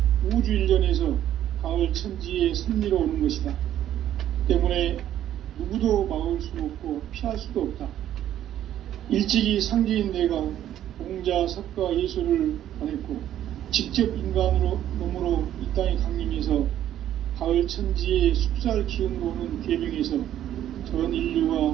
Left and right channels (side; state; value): left; quieter; 11.6 dB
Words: 우주 일련에서 가을 천지의 섭리로 오는 것이다. 때문에 누구도 막을 수 없고 피할 수도 없다. 일찍이 상제인 내가 공자, 석가, 예수를 보냈고 직접 인간으로 몸으로 이 땅에 강림해서 가을 천지의 숲살 기운으로 오는 계명에서 전